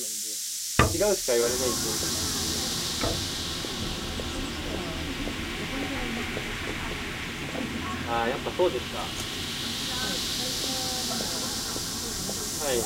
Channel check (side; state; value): both; identical; correlation 1.00